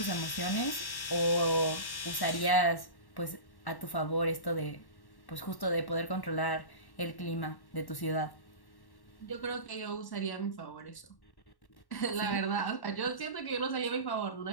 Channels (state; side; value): late; right; 1.1 ms